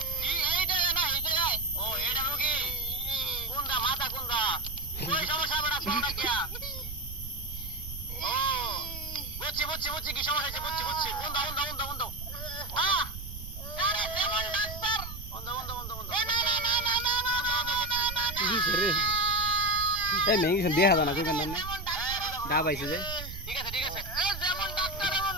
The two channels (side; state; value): right; noise; rumble, 10 dB below the sound